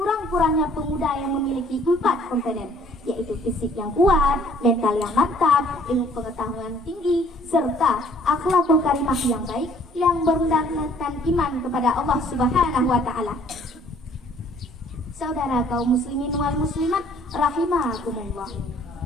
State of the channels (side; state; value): both; normal; correlation 0.58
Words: pemuda yang memiliki 4 komponen, yaitu fisik yang kuat, mental yang mantap, ilmu pengetahuan tinggi, serta akhlakul karimah yang baik yang berdasarkan iman kepada Allah Subhanahu wa Ta'ala. Saudara kaum muslimin wal muslimat rahimakumullah.